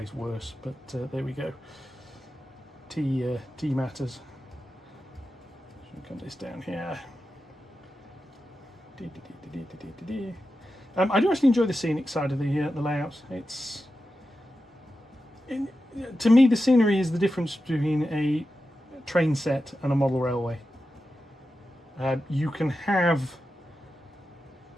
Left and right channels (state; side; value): normal; both; correlation 0.91